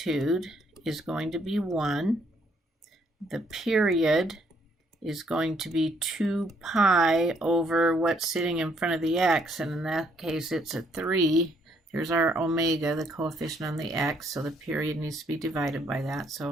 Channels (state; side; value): normal; both; correlation 0.68